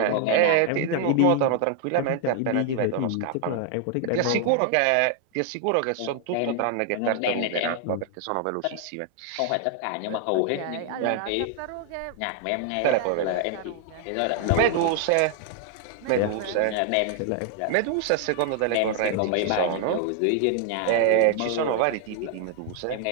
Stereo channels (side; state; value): both; different; correlation 0.00